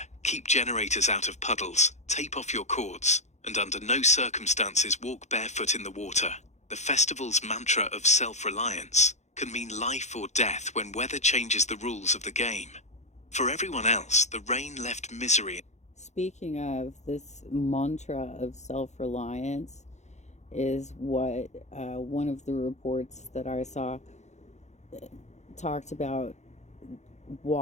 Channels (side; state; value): right; late; 0.33 ms